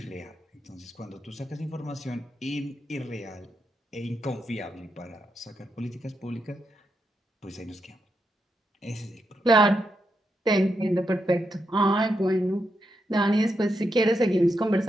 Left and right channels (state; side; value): normal; both; correlation 0.83